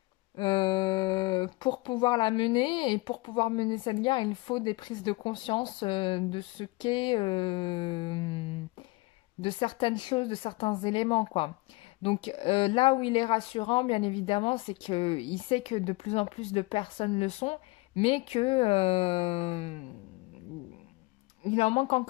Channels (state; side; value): quieter; right; 23.7 dB